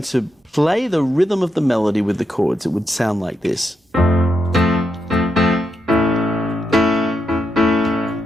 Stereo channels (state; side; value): normal; both; correlation 0.83